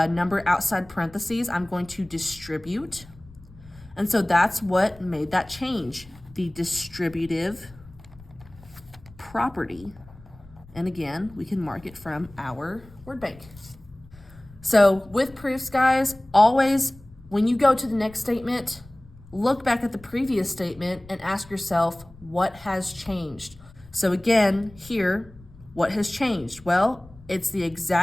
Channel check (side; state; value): left; noise; rumble, 22 dB below the sound